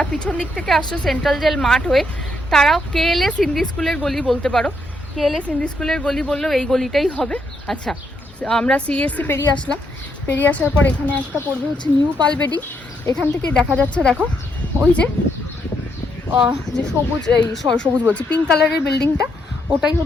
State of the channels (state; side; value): normal; both; correlation 0.77